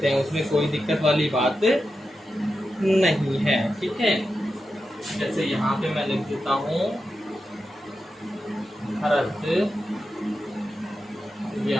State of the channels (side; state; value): both; normal; correlation 0.90